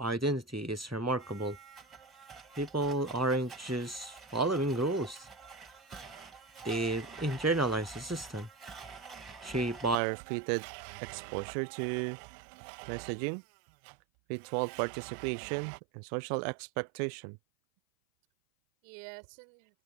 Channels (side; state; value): left; drops out; at 10.0 s